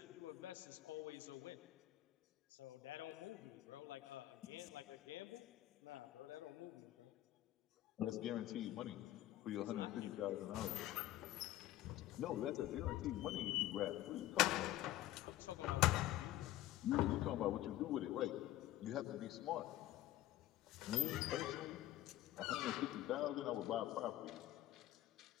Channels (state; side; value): quieter; right; 14.9 dB